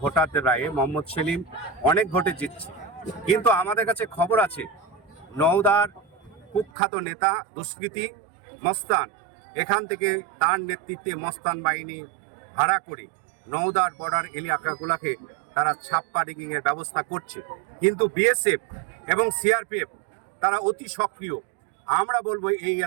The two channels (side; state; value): left; drops out; at 6.7 s